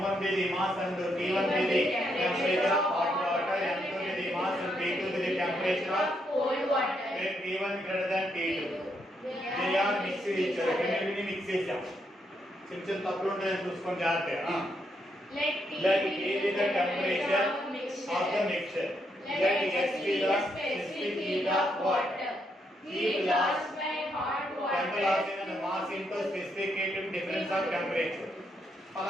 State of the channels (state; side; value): normal; both; correlation 0.77